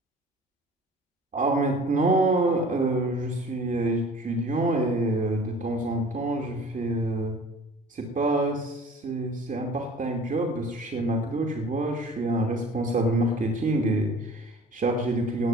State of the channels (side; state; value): both; normal; correlation 0.46